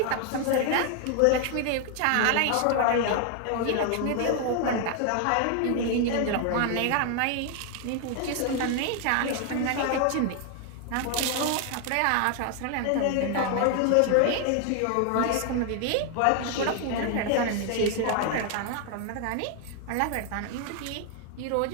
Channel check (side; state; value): both; different; correlation 0.00